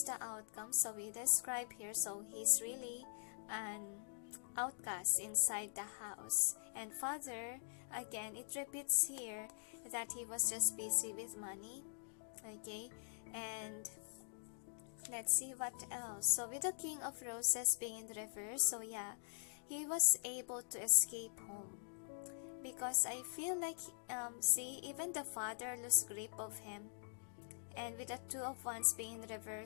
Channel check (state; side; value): silent; right; digital silence